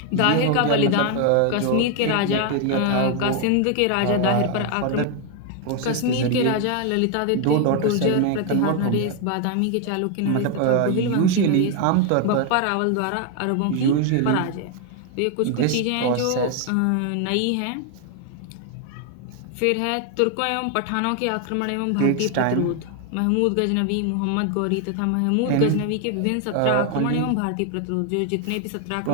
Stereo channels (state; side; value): different; both; correlation 0.00